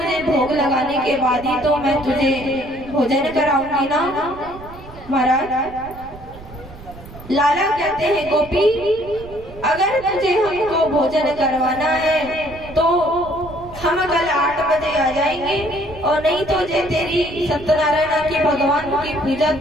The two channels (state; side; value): noise; right; rumble, 17 dB below the sound